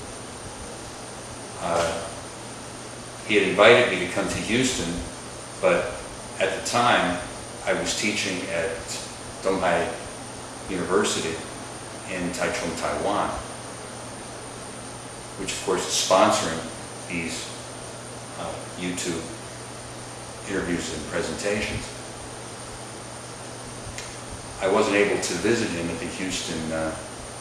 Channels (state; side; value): identical; both; correlation 1.00